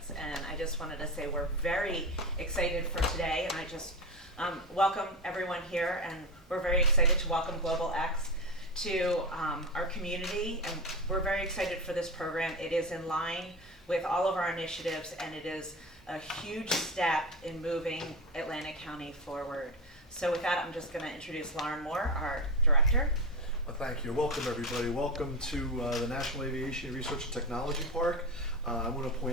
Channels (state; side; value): normal; both; correlation 0.20